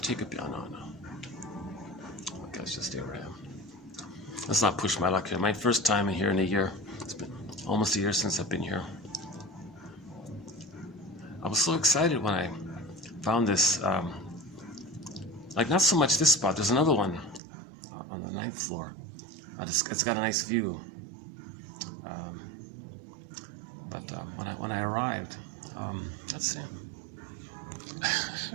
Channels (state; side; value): drops out; left; at 17.4 s